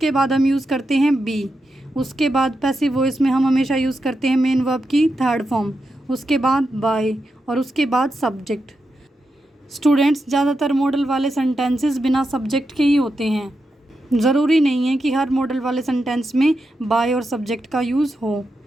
बाद हम यूज़ करते हैं बी। उसके बाद पैसिव वॉइस में हम हमेशा यूज़ करते हैं मेन वर्ब की थर्ड फॉर्म, उसके बाद बाय, और उसके बाद सब्जेक्ट। स्टूडेंट्स ज़्यादातर मॉडल वाले सेंटेंसेस बिना सब्जेक्ट के ही होते हैं। ज़रूरी नहीं है कि हर मॉडल वाले सेंटेंस में बाय और सब्जेक्ट का यूज़ हो।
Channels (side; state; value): both; normal; correlation 0.87